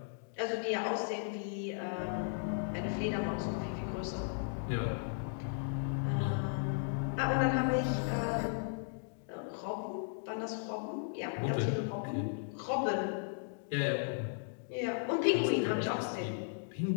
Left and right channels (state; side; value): silent; right; digital silence